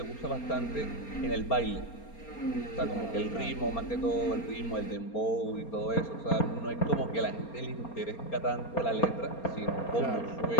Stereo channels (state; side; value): late; right; 4.3 ms